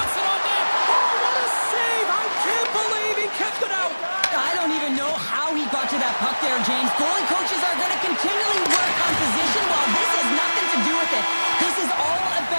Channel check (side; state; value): both; inverted; correlation -1.00